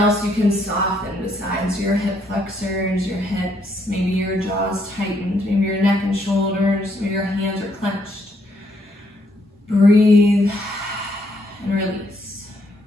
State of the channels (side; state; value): both; normal; correlation 0.72